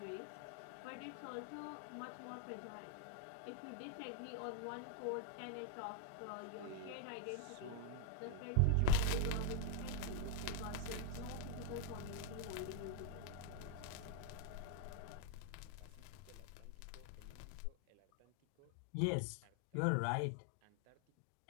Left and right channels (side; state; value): both; different; correlation 0.01